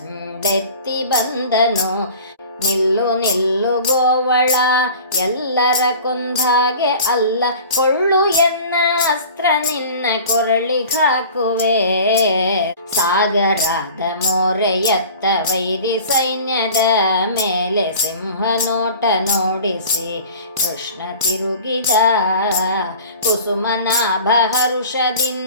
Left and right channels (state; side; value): inverted; both; correlation -0.42